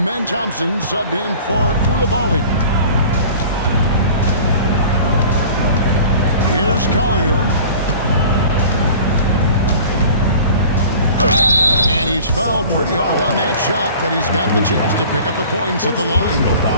Thompson subbed in for Koulibaly. Here's Collier. And he's fouled pretty hard on that shot, but he's got the chance to pick up the points at the line.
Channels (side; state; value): both; inverted; correlation -0.44